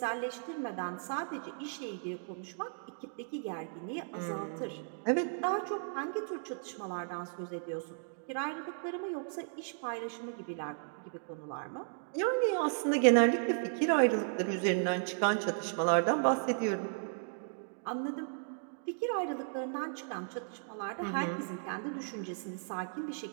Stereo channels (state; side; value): silent; left; digital silence